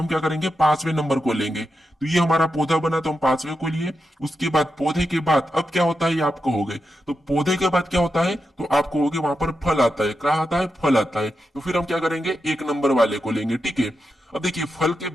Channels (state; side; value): normal; both; correlation 0.88